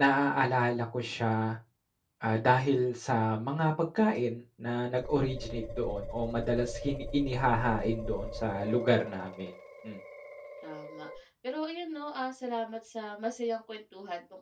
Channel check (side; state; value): both; identical; correlation 1.00